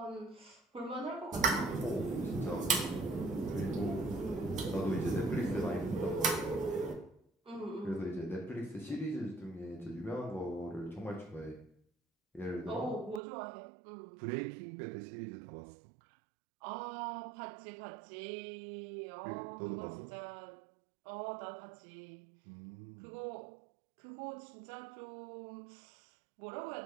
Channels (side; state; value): left; drops out; at 13.2 s